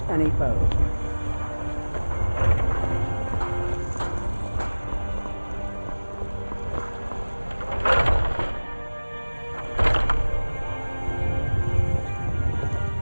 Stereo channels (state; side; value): inverted; both; correlation -1.00